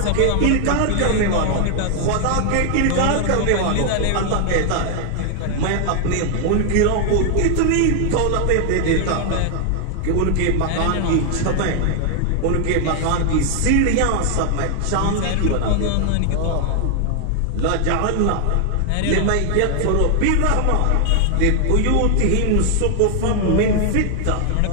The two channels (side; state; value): both; different; correlation 0.00